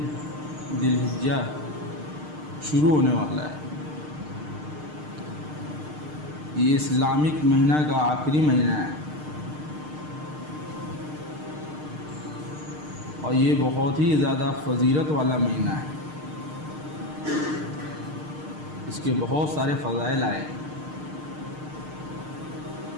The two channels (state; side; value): late; left; 6.6 ms